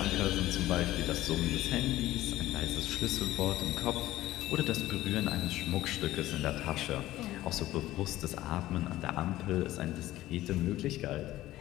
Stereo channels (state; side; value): quieter; right; 15.5 dB